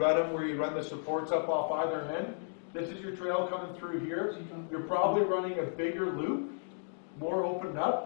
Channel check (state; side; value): silent; right; digital silence